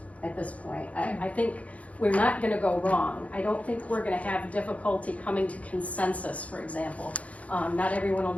at this point. I think we're not gonna go wrong. I don't think we're gonna have difficulty coming to consensus, for example. Not everyone will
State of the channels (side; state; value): right; late; 0.067 ms